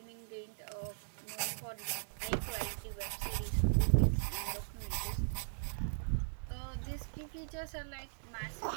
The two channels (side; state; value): left; silent; digital silence